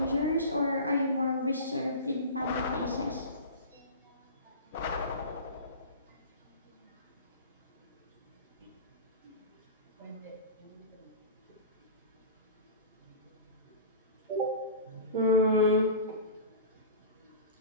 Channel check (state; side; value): inverted; both; correlation -0.33